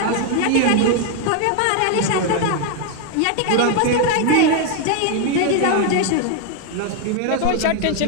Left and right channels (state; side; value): different; both; correlation 0.01